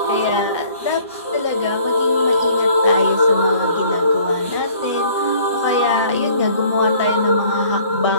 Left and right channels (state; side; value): inverted; both; correlation -0.55